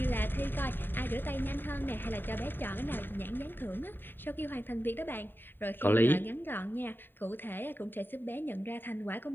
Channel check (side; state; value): right; late; 0.095 ms